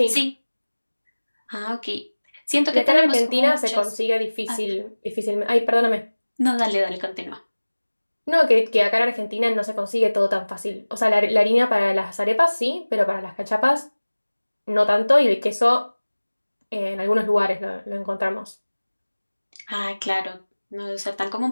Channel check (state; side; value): inverted; both; correlation -1.00